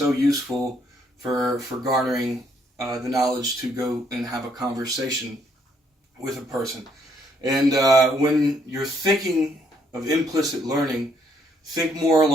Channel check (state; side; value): normal; both; correlation 0.70